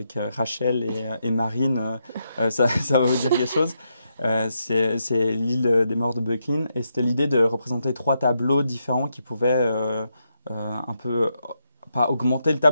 Rachel et Marine, ça va vous dire quelque chose. C'est l'île des morts de Böcklin. Et c'était l'idée de représenter 3 tableaux différents qui pouvaient un peu, pas augmenter le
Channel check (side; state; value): both; inverted; correlation -0.82